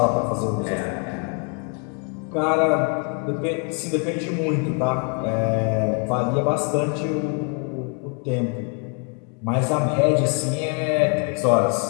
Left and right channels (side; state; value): right; quieter; 38.4 dB